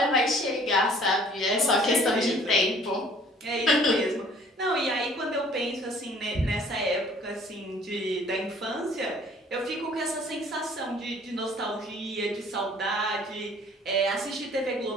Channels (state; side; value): normal; both; correlation 0.55